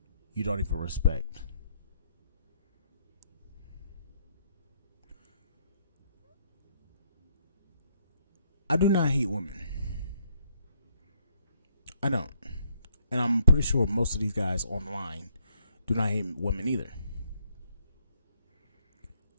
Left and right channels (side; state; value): both; inverted; correlation -0.71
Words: you don't even respect? I do not hate women. I don't. And I'm pretty sure most of these guys online do not hate women either.